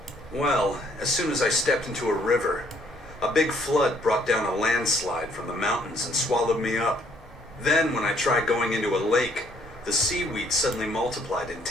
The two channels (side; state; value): both; normal; correlation 0.64